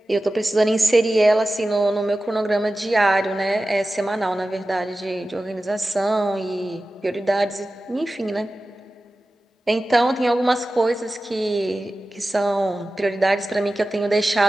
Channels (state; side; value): normal; both; correlation 0.95